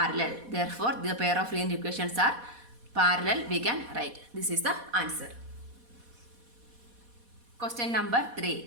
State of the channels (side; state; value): left; late; 4.1 ms